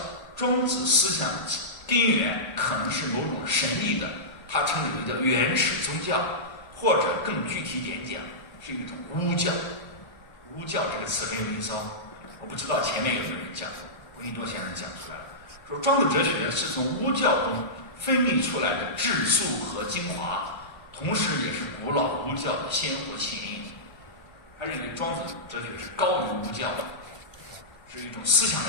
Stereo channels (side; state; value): right; late; 1.0 ms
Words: 庄子思想根源可能是某种神秘的，他称之为叫原始宗教，或者更具体点讲，是一种巫教。巫教这个词很有意思哦，我不知道前面有没有人讲过，闻一多先生讲出来了，说庄子哲学是从巫教中分泌出来的质素和精华，同时也是古老巫教的鲜活起因。他认为庄子哲学是高于巫教的，是一种思想